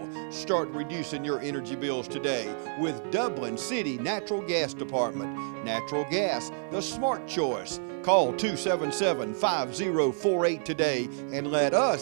Start reducing your energy bills today with Dublin City Natural Gas Department. Natural gas, the smart choice. Call 277-5048 today and let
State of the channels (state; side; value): silent; left; 59 dB below the other